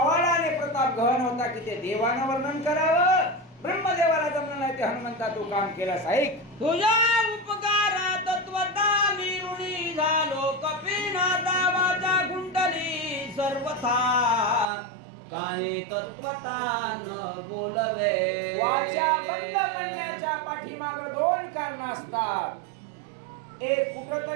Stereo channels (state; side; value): drops out; left; at 14.7 s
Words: आणि प्रताप गहन होता की ते देवानं वर्णन करावं. ब्रह्मदेवाला जमलं नाही ते हनुमंता तू काम केलास. ऐक, तुझ्या उपकारात तत्वता मी ऋणी झालो. कपिनाथा वाचा कुंडली सर्वथा. काही तत्वता न बोलवे. वाचा बंद करण्याच्या पाठीमाग दोन कारण असतात. एक,